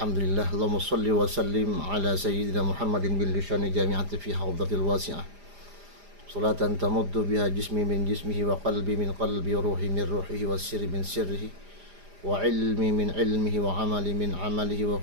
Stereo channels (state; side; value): late; left; 4.9 ms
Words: Allahumma salli wa sallim ala sayyidina Muhammadin bil lisani jami'ati fi hawdatil wasi'ah. Salatan tamuddu biha jismi min jismihi wa qalbi min qalbi wa ruhi min ruhihi wa sirri min sirrihi wa ilmi min ilmihi wa amali min amalihi wa